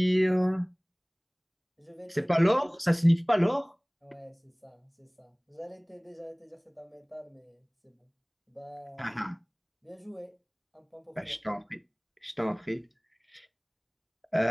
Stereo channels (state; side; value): identical; both; correlation 1.00